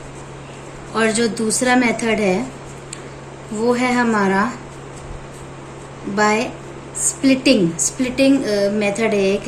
और जो दूसरा मेथड है वो है हमारा बाय स्प्लिटिंग मेथड है एक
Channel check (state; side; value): identical; both; correlation 1.00